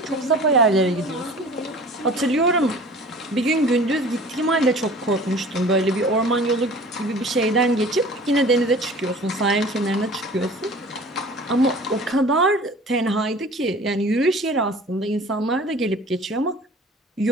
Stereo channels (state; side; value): normal; both; correlation 0.44